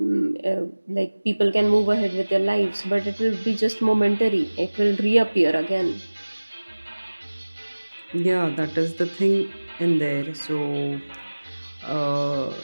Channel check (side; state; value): both; inverted; correlation -1.00